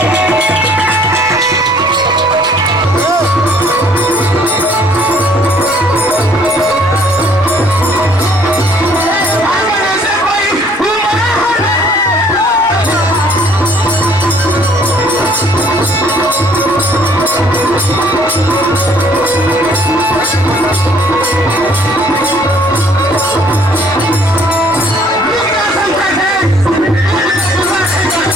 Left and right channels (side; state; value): both; normal; correlation 0.60